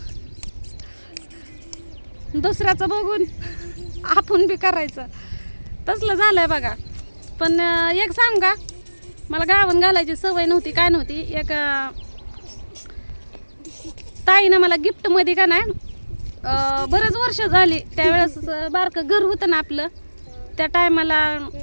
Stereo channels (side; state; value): both; inverted; correlation -1.00